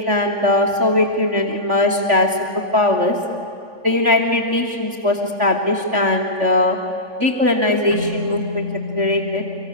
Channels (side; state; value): left; late; 3.4 ms